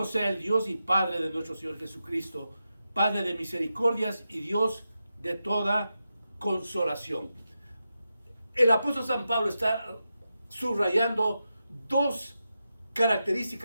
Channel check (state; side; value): inverted; both; correlation -0.89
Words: sea el Dios y Padre de nuestro Señor Jesucristo, Padre de misericordias y Dios de toda consolación. El apóstol San Pablo está subrayando dos